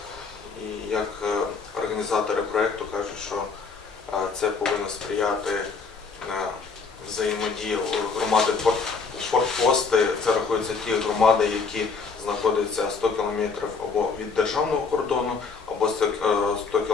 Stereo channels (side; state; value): right; quieter; 4.9 dB